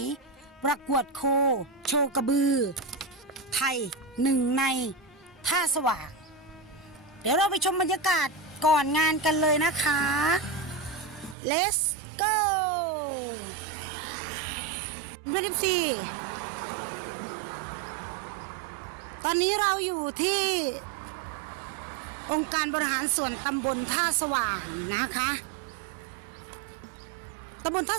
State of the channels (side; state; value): left; drops out; at 11.4 s